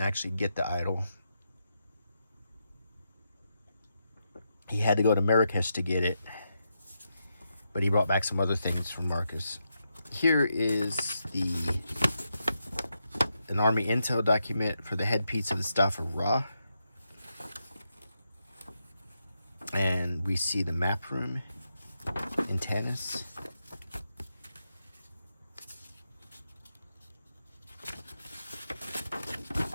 actually get the idol. He had to go to Marrakesh to get it, but he brought back some other things from Marcus. Here is an Army intel document for the headpiece of the Staff of Ra. And we see the map room in Tanis.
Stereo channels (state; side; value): inverted; both; correlation -0.84